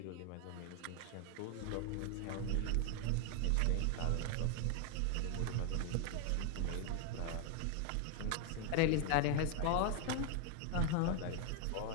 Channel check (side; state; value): both; different; correlation 0.01